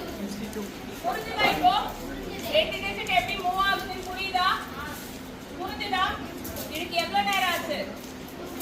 புரிஞ்சுதா? இப்போ ரெண்டு டிஜிட் எப்படி மூவ் ஆகுதுன்னு புரியுதா? புரிஞ்சுதா? இதுக்கு எவ்வளவு நேரம் ஆச்சு?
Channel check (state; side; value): identical; both; correlation 1.00